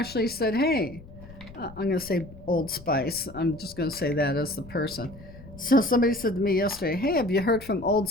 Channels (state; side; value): noise; left; rumble, 18 dB below the sound